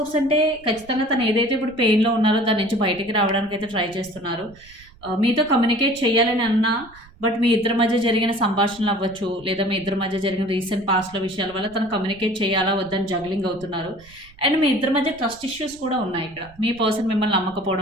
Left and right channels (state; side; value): noise; right; rumble, 24 dB below the sound